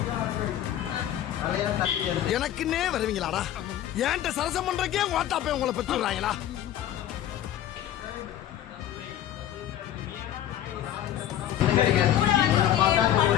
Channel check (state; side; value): quieter; right; 11.6 dB